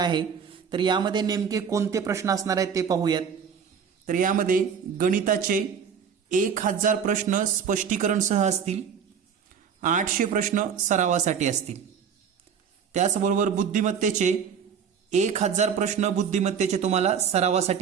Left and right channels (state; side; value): quieter; left; 7.1 dB